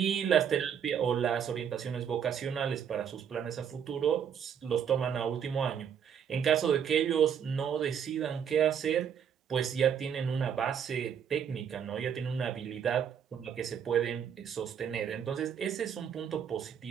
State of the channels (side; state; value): left; quieter; 8.1 dB